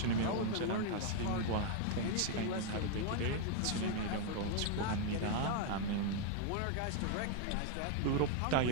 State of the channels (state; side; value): different; both; correlation 0.01